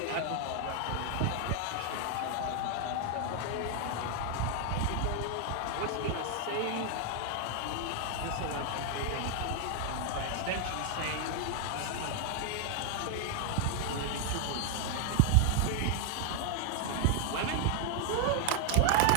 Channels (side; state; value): both; different; correlation 0.00